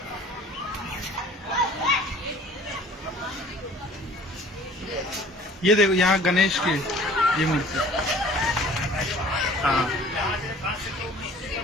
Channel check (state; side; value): normal; both; correlation 0.50